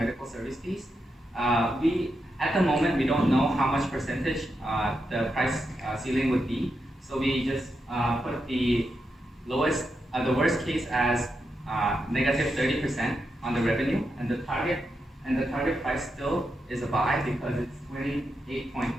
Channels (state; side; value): normal; both; correlation 0.85